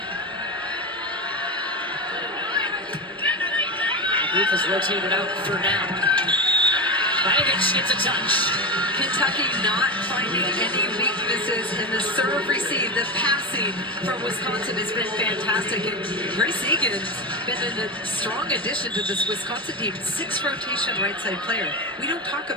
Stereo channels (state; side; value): normal; both; correlation 0.18